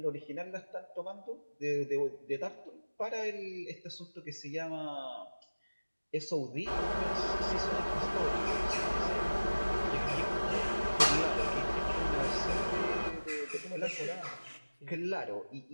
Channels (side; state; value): both; inverted; correlation -1.00